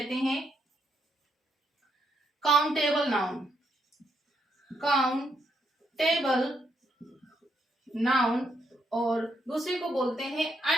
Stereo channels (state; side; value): normal; both; correlation 0.77